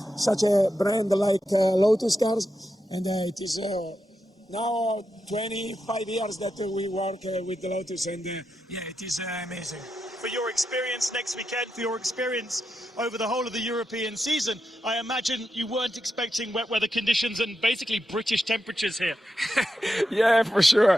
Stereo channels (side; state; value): both; normal; correlation 0.87